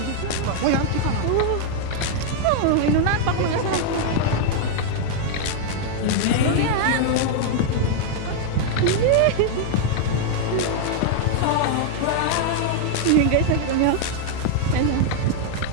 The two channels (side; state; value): both; different; correlation -0.01